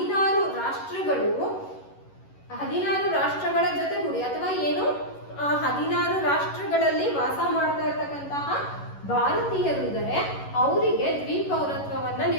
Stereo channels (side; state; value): right; late; 11 ms